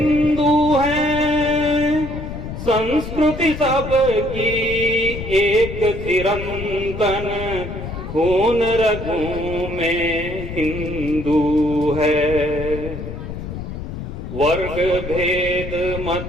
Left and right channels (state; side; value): noise; left; rumble, 8 dB below the sound